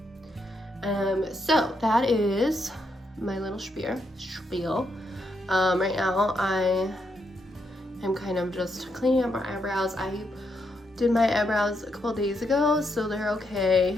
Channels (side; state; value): both; normal; correlation 0.79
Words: So that is my little spiel. Right now I am kind of just cleaning up my eyebrows. I did my eyebrows a couple days ago, so they're